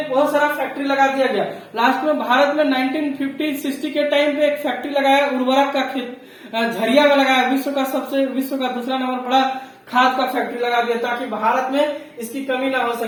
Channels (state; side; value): identical; both; correlation 1.00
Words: बहुत सारा फैक्ट्री लगा दिया गया। लास्ट में भारत में 1950-60 के टाइम पे एक फैक्ट्री लगाया, उर्वरक का खेत झरिया में लगाया, विश्व का दूसरा नंबर बड़ा खाद का फैक्ट्री लगा दिया, ताकि भारत में इसकी कमी ना हो